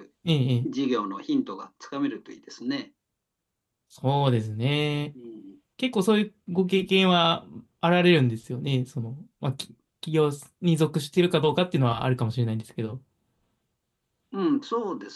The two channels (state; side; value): identical; both; correlation 1.00